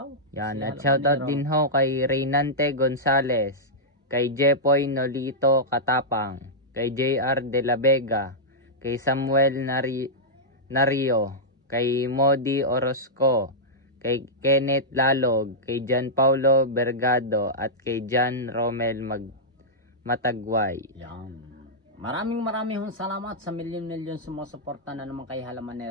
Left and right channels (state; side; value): normal; both; correlation -0.09